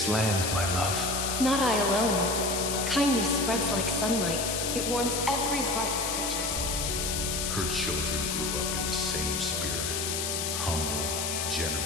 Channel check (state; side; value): noise; left; hiss, 1 dB below the sound